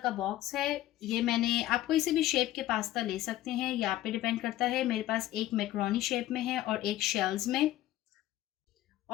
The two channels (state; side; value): quieter; right; 14.4 dB